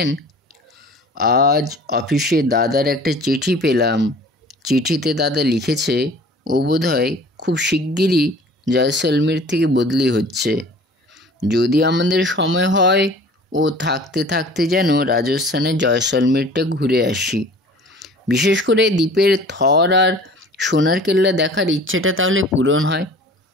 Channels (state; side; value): normal; both; correlation 0.46